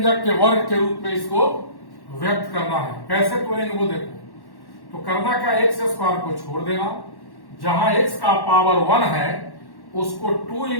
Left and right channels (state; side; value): late; right; 1.1 ms